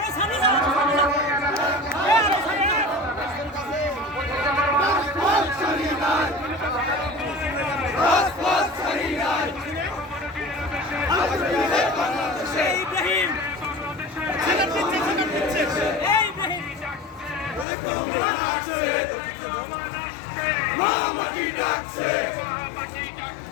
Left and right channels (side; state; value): right; drops out; at 17.7 s